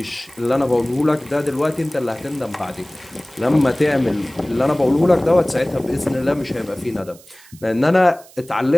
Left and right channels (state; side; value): noise; right; hiss, 24 dB below the sound